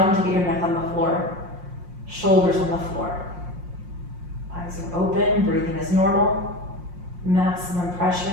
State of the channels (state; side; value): late; left; 5.6 ms